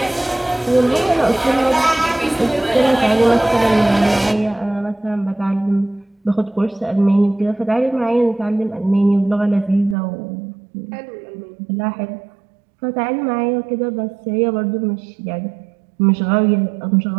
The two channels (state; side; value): drops out; left; at 10.0 s